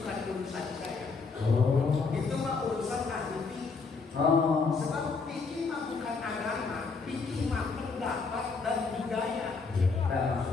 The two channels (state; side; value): quieter; right; 4.5 dB